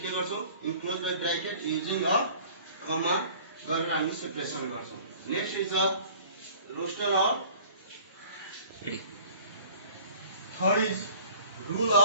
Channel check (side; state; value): both; inverted; correlation -0.49